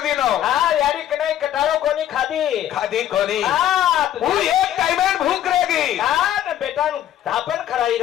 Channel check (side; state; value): right; quieter; 11.6 dB